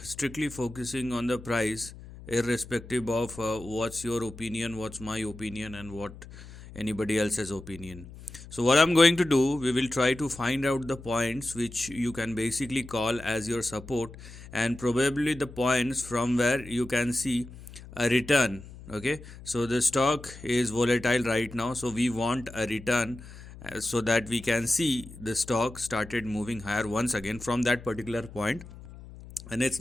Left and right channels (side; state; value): left; noise; hum, 16 dB below the sound